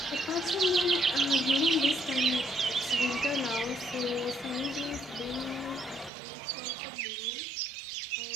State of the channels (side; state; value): left; drops out; at 6.1 s